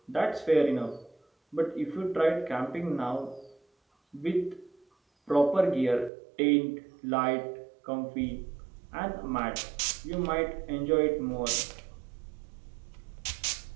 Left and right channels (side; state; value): left; drops out; at 6.1 s